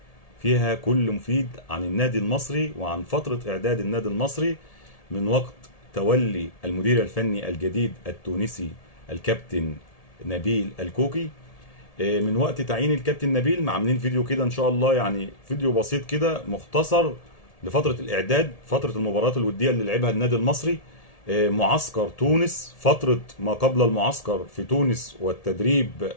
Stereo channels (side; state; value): right; late; 1.7 ms